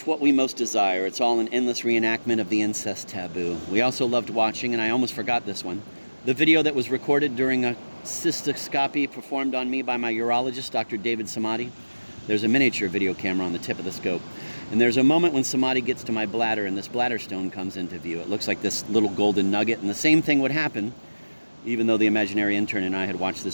what we most desire. It's all an endless reenactment of the incest taboo. We also loved watching, and I almost forgot this one, the video that was recorded during a cystoscopy performed on me by my urologist, Dr. David Samadi. There's a miniature video camera on the tip of the scope. And there's a moment when Samadi gets to my bladder and this bladder stone comes into view. It looks like this little golden nugget, and the same thing would happen, even though the imaginary intern and I had watched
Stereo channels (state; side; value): inverted; both; correlation -1.00